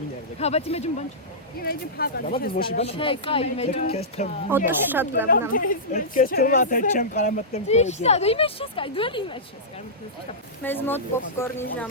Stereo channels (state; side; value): normal; both; correlation -0.17